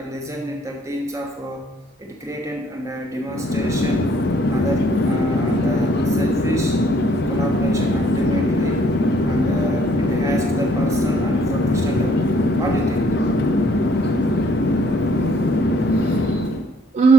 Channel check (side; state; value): both; normal; correlation 0.63